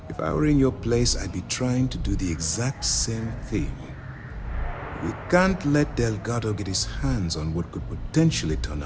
If I were in your place, I'd be trying to do the exact same thing. We can't let Delgado get his hands on what could potentially turn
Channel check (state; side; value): identical; both; correlation 1.00